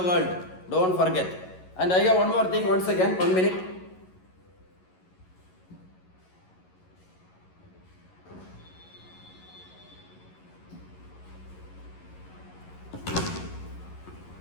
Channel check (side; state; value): right; late; 11 ms